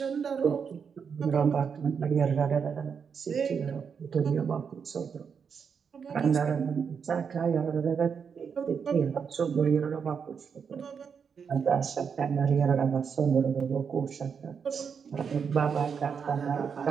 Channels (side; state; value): left; quieter; 6.5 dB